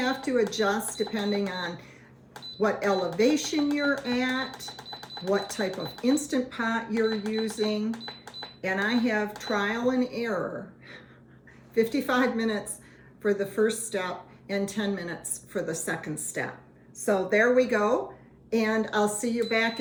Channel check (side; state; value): both; identical; correlation 1.00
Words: to adjust depending on what elevation you're at, what type of Instant Pot you're using, and I have trial and error. 55 minutes for the first step and 10 minutes for the second step. So there we go, and I'll see you back